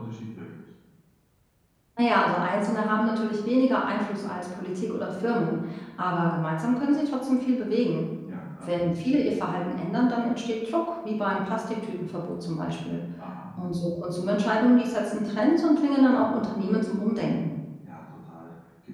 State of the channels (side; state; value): both; identical; correlation 1.00